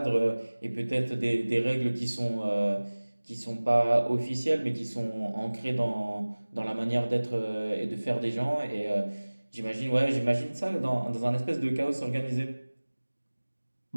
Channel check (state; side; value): inverted; both; correlation -1.00